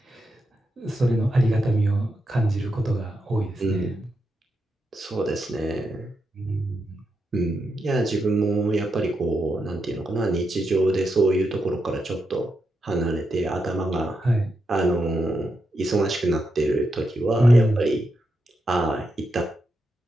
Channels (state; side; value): normal; both; correlation 0.85